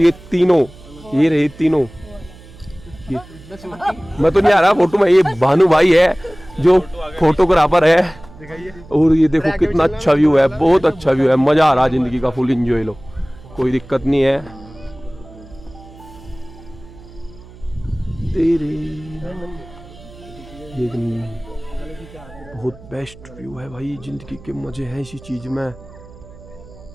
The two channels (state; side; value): noise; right; hum, 20 dB below the sound